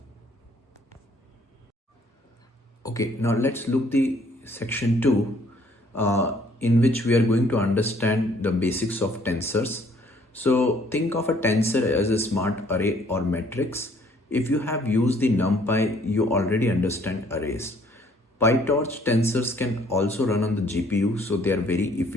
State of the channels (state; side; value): normal; both; correlation 0.62